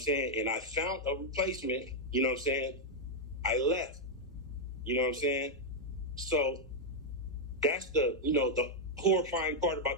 saying? And I found a replacement, you know what I'm saying? I left, you know what I'm saying? So that's the horrifying part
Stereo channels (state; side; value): normal; both; correlation -0.01